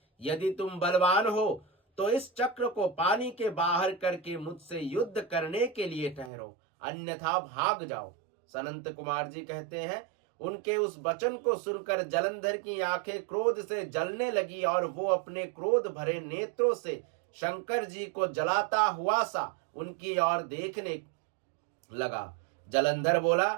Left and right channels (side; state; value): left; drops out; at 6.3 s